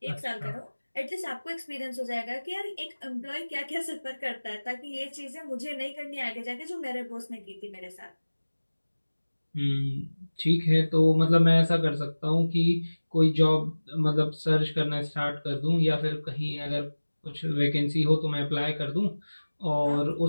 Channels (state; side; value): inverted; both; correlation -1.00